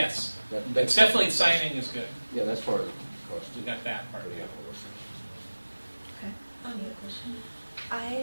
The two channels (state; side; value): inverted; both; correlation -1.00